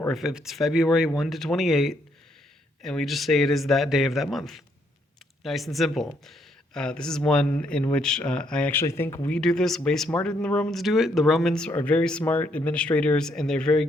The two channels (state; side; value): normal; both; correlation 0.72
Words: if it's February, 1 to 28, and we just say it is that day of that month. Nice and simple. This is one in which I actually think we do this way smarter than the Romans do it. The Romans are very smart administrators and they're very